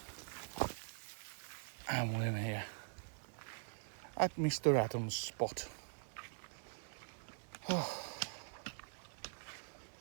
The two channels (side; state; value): left; silent; digital silence